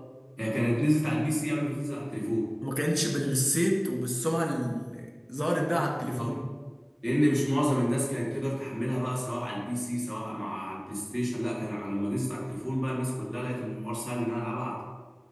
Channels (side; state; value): both; identical; correlation 1.00